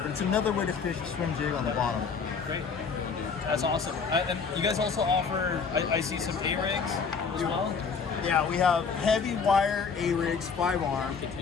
it's another way to fish a swim jig on the bottom. Great. That's awesome. And you guys also offer, I see some A-rigs as well? Yeah, we have heavy wire A-rigs, 5-arm,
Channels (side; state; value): right; quieter; 5.5 dB